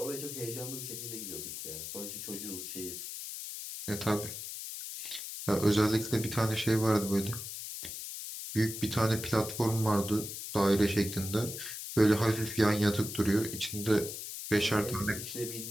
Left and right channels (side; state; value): left; noise; hiss, 8 dB below the sound